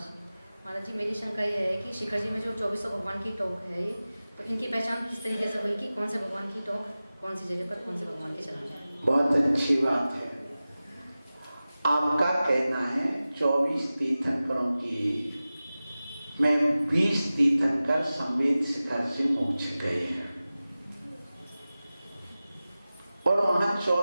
जी। महाराज जी, मेरी शंका यह है कि शिखर जी में जो 24 भगवान की टोक है, तो इनकी पहचान किस तरीके से हुई कि कौन से भगवान की टोक कौन सी जगह पर कौन से भगवान के चढ़ाना है? बहुत अच्छी बात है। आपका कहना है 24 तीर्थंकरों की में 20 तीर्थंकर संवेद शिखर से मोक्ष गए हैं और वहां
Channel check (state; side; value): inverted; both; correlation -0.96